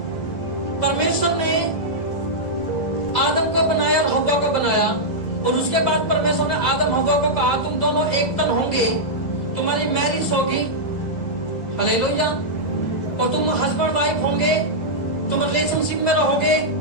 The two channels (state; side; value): late; right; 2.0 ms